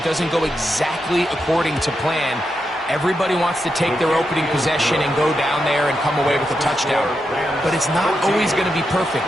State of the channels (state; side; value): normal; both; correlation 0.85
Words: doesn't go exactly according to plan, everybody wants to take their opening possession and go down there and come away with a touchdown. But it's not always going to be